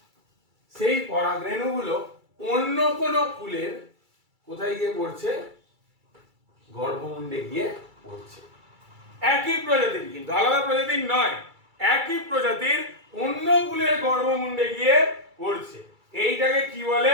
সেই পরাগরেণুগুলো অন্য কোন ফুলের কোথায় গিয়ে পড়ছে? গর্ভমুণ্ডে গিয়ে পড়ছে। একই প্রজাতির, কিন্তু আলাদা প্রজাতির নয়, একই প্রজাতির অন্য ফুলের গর্ভমুণ্ডে গিয়ে পড়ছে। এইটাকে কি বলে?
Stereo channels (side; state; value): left; late; 2.3 ms